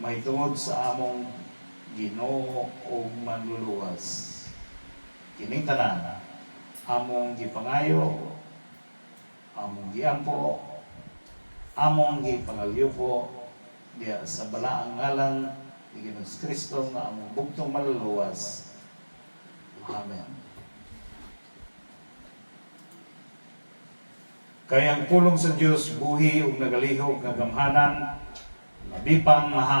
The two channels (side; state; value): both; inverted; correlation -1.00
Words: sa among Ginoo o manluluwas. Kining tanan among gipangayo, among giampo, among gipangalyupo diya sa balaang ngalan ni Ginoong Kristo nga among bugtong maluluwas. Amen. Kaya ang pulong sa Diyos buhi ug nagalihok nga gamhanan, labi pang